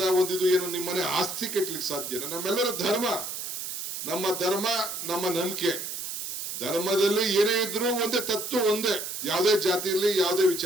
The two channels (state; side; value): noise; right; hiss, 6 dB below the sound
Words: ಒಂದಿದು ಏನು ನಿಮ್ಮನೆ ಆಸ್ತಿ ಕೆಟ್ಲಿಕ್ಕೆ ಸಾಧ್ಯನಾ? ನಮ್ಮೆಲ್ಲರ ಧರ್ಮ, ನಮ್ಮ ಧರ್ಮ, ನಮ್ಮ ನಂಬಿಕೆ. ಧರ್ಮದಲ್ಲಿ ಏನೇ ಇದ್ರು ಒಂದೇ ತತ್ವ, ಒಂದೇ, ಯಾವುದೇ ಜಾತಿಯಲ್ಲಿ ಯಾವುದೇ